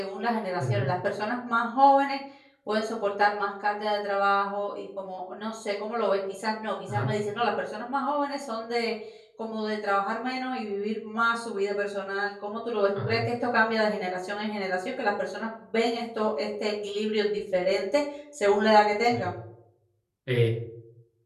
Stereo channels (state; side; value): identical; both; correlation 1.00